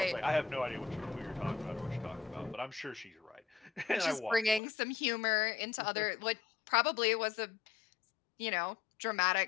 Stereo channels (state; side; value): drops out; right; at 4.6 s